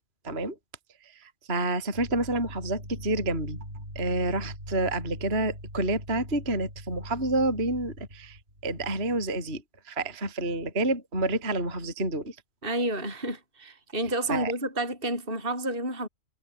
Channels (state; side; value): late; left; 2.6 ms